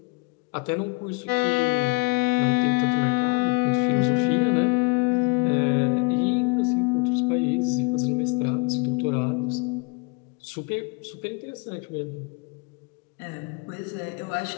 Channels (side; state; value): right; quieter; 28.5 dB